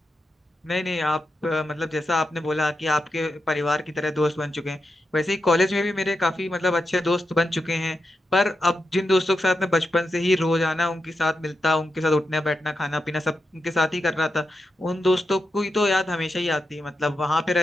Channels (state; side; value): normal; both; correlation 0.87